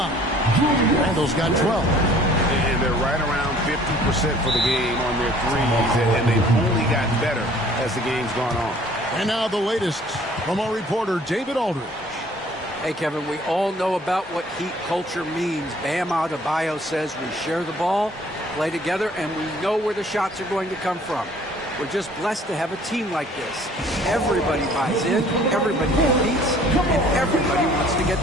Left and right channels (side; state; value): both; normal; correlation 0.55